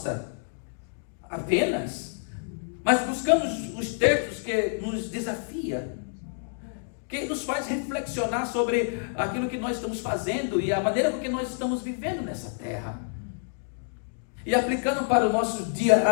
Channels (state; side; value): silent; right; digital silence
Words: apenas, mas buscando os textos que nos desafia, que nos faz reflexionar sobre aquilo que nós estamos fazendo e a maneira com que nós estamos vivendo nessa terra. E aplicando para o nosso dia